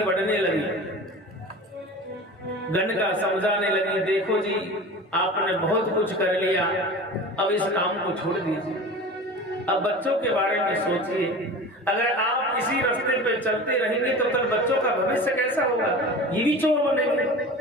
बढ़ने लगी। गणिका समझाने लगी, देखो जी, आपने बहुत कुछ कर लिया, अब इस काम को छोड़ दीजिए, अब बच्चों के बारे में सोचिए। अगर आप इसी रास्ते पे चलते रहेंगे तो कल बच्चों का भविष्य कैसा होगा? ये भी चोर बनेंगे,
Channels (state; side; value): normal; both; correlation 0.35